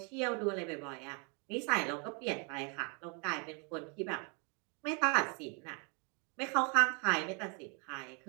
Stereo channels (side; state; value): left; quieter; 35.2 dB